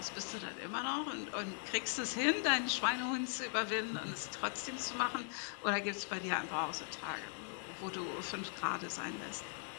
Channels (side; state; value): right; silent; 51 dB below the other